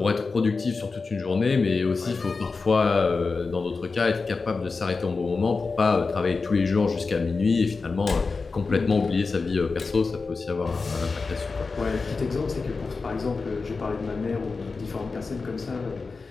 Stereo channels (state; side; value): quieter; right; 4.3 dB